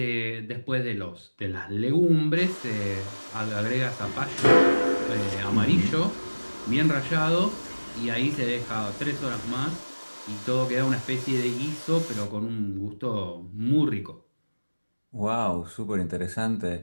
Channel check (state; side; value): inverted; both; correlation -1.00